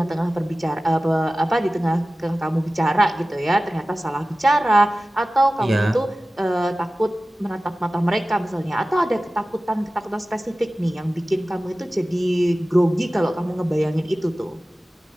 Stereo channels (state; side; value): normal; both; correlation 0.96